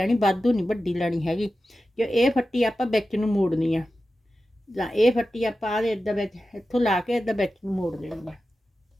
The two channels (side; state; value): both; normal; correlation 0.93